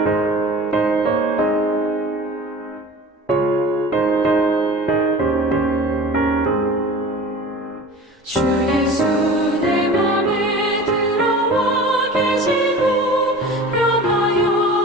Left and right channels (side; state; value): both; normal; correlation 0.39